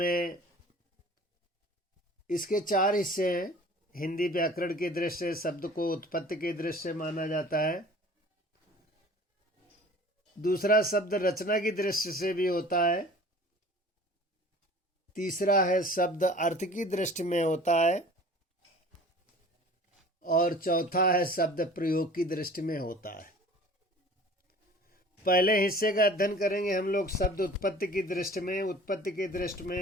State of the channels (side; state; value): both; normal; correlation 0.46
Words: इसके 4 हिस्से हैं। हिंदी व्याकरण की दृष्टि से शब्द को उत्पत्ति की दृष्टि से माना जाता है। दूसरा शब्द रचना की दृष्टि से भी होता है। तीसरा है शब्द अर्थ की दृष्टि में होता है। और चौथा है शब्द प्रयोग की दृष्टि में होता है। पहले हिस्से का अध्ययन करेंगे हम लोग शब्द उत्पत्ति की दृष्टि में। उत्पत्ति की दृष्टि